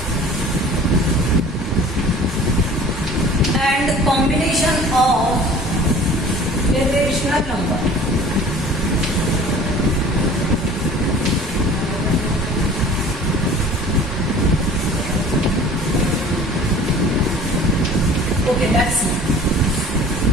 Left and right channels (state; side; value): normal; both; correlation 0.46